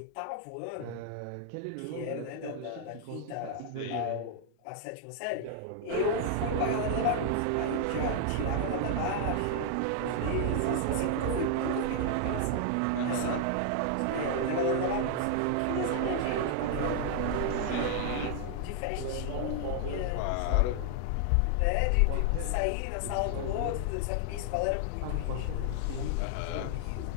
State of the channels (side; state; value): both; different; correlation -0.01